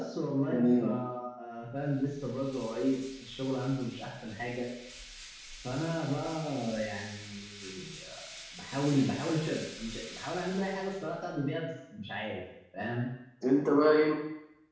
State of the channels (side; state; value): both; identical; correlation 1.00